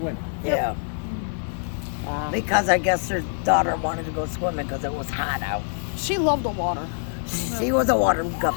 Yeah. Because I guess her daughter wanted to go swimming because it was hot out. She loved the water. She was a water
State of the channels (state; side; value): silent; right; digital silence